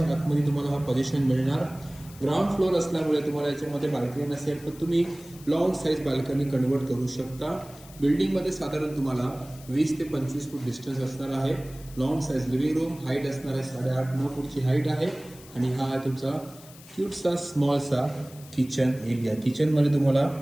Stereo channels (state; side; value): noise; left; hiss, 21 dB below the sound